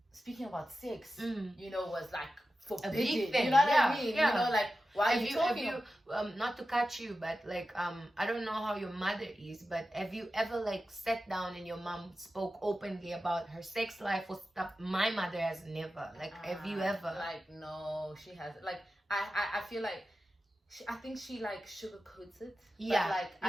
speaking about sex, you know, was like forbidden. A big thing. You know what I mean? You know, like, why are you talking? Not to cut you, but like, I don't know how your mother is, but have you ever like sat down and your mom spoke openly about her sex life or stuff? My mother has never. Like, have you ever? Like, no, she hasn't. Like, I feel like, I think she like sugarcoats it. Yeah. But like,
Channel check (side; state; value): both; normal; correlation 0.92